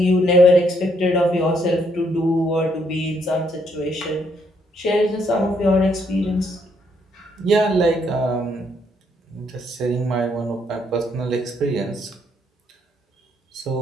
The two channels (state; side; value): normal; both; correlation 0.71